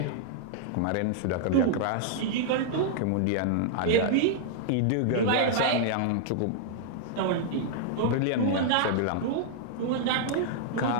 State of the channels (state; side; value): different; both; correlation -0.01